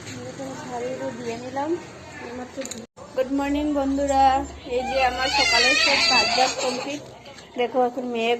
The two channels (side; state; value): both; identical; correlation 1.00